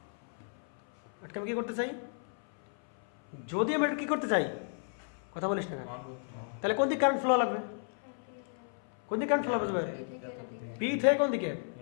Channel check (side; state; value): right; silent; 56 dB below the other